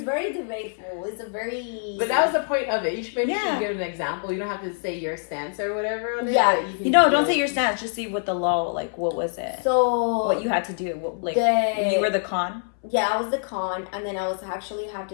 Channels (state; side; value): silent; right; 62 dB below the other